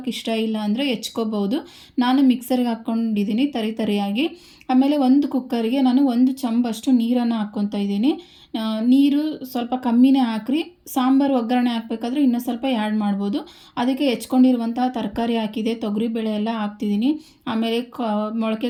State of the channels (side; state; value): both; identical; correlation 1.00